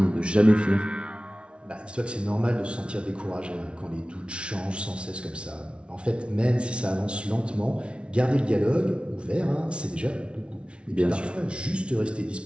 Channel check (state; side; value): late; left; 0.059 ms